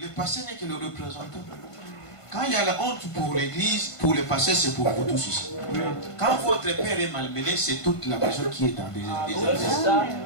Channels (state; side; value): late; right; 1.5 ms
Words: pasteur n'est que le représentant. Quand il y a la honte pour l'église, pour le pasteur, c'est pour vous tous ici. Quand votre père est malmené, c'est toute la maison qui est dans des